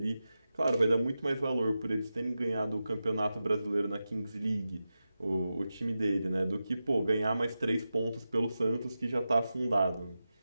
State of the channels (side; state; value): both; inverted; correlation -0.92